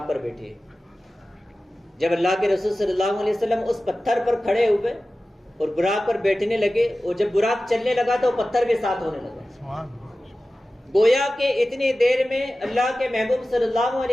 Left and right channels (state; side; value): normal; both; correlation 0.95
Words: پر بیٹھے. جب اللہ کے رسول صلی اللہ علیہ وسلم اس پتھر پر کھڑے ہوئے اور براق پر بیٹھنے لگے, اور جب براق چلنے لگا تو پتھر بھی ساتھ ہونے لگا. گویا کہ اتنی دیر میں اللہ کے محبوب صلی اللہ